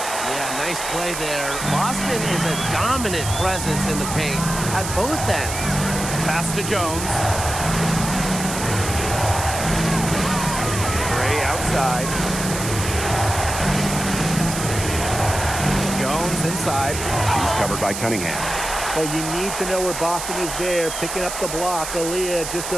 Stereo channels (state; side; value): noise; right; hiss, 6 dB below the sound